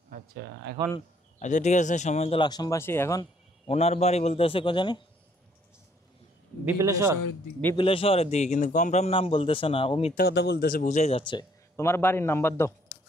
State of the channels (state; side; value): normal; both; correlation 0.65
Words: আচ্ছা, এখন আচ্ছা ঠিক আছে, সম্মানিত লাকসামবাসী, এখন ওনার বাড়ি বলতেছে কোজানে? বিপিলেশ্বর। বিপিলেশ্বরের দিকে, কিন্তু কমফার্ম নাম বলতেছে না, ও মিথ্যা কথা বলতেছে, বুঝাই যাচ্ছে। তোমার বাড়ির নাম্বার দাও,